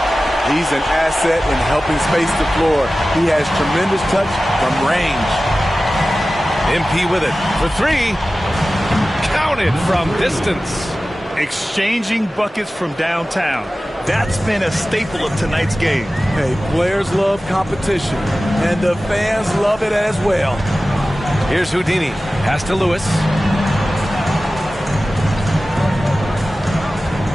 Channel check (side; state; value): both; normal; correlation 0.96